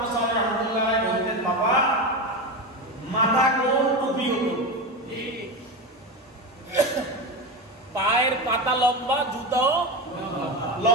সাল্লাল্লাহু আলাইহি ওয়াসাল্লাম বলতেন বাবা মাথা কোন টুপি হতো, পায়ের পাতা লম্বা, জুতাও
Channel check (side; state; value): both; normal; correlation 0.19